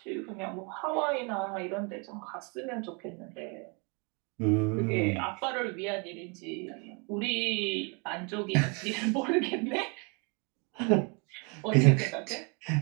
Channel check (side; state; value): left; quieter; 33.0 dB